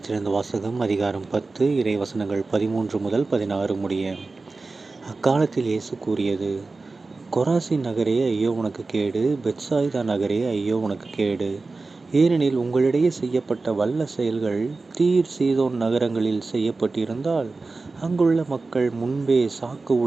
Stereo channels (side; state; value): left; quieter; 3.7 dB